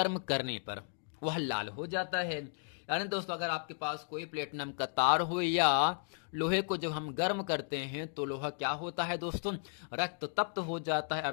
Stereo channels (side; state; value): right; silent; digital silence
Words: करने पर वह लाल हो जाता है। यानी दोस्तों अगर आपके पास कोई प्लेटिनम का तार हो या लोहे को जब हम गर्म करते हैं तो लोहा क्या होता है दोस्तों, रक्त तप्त हो जाता है,